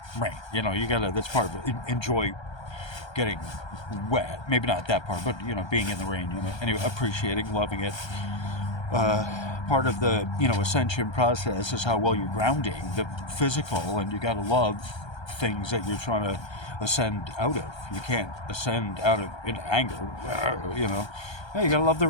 rain. That's part of it. Enjoy getting wet. Maybe not that part, but, being in the rain, anyway, appreciating, loving it. Part of the ascension process is how well you're grounding the physical, and you got to love things that you're trying to ascend out of. You can't ascend out of in anger. Yeah, you got to love the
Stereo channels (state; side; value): late; right; 1.3 ms